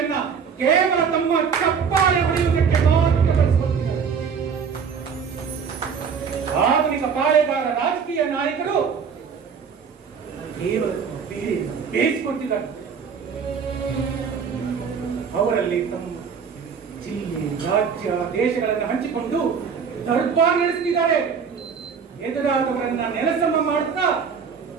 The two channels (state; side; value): quieter; left; 6.4 dB